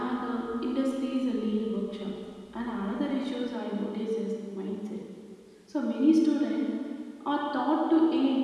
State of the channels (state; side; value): identical; both; correlation 1.00